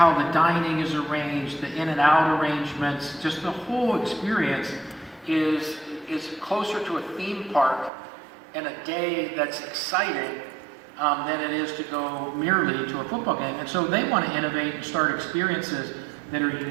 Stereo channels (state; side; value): drops out; left; at 7.9 s